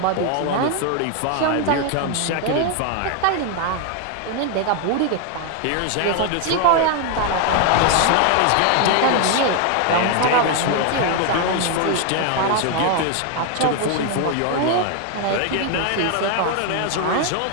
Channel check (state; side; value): different; both; correlation 0.01